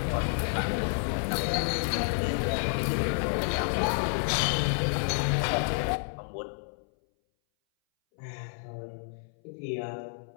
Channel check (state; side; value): silent; right; 58 dB below the other